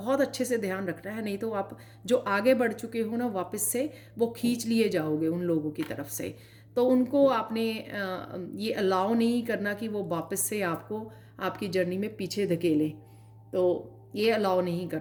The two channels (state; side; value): identical; both; correlation 1.00